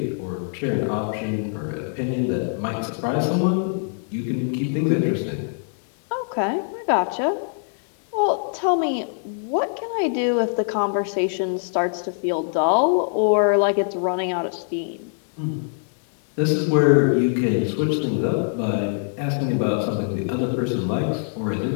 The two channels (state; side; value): silent; right; digital silence